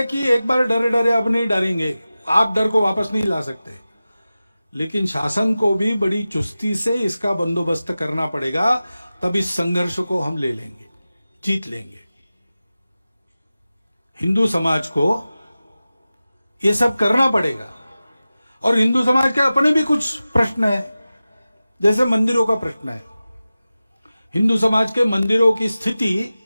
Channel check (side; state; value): both; inverted; correlation -0.95